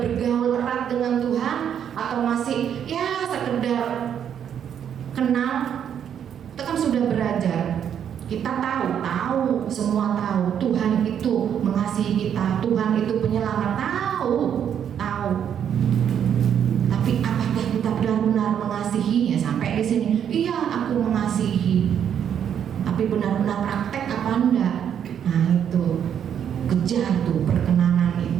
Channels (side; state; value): left; quieter; 8.8 dB